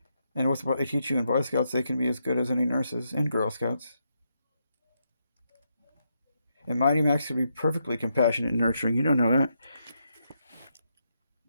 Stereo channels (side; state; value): both; inverted; correlation -0.81